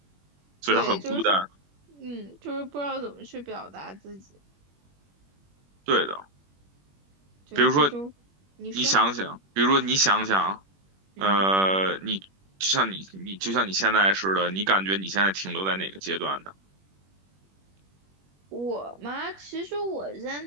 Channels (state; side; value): late; left; 21 ms